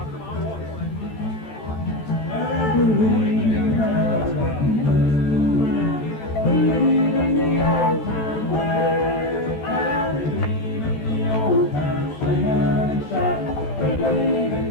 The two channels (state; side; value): late; right; 14 ms